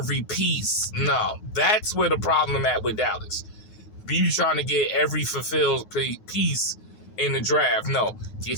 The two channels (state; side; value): late; right; 9.4 ms